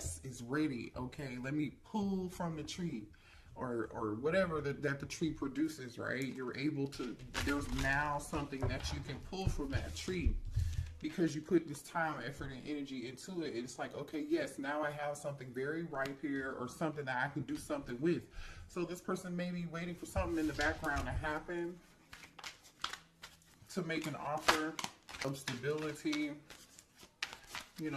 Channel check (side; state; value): both; identical; correlation 1.00